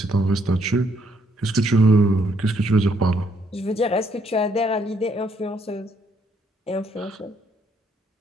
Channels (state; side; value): normal; both; correlation 0.70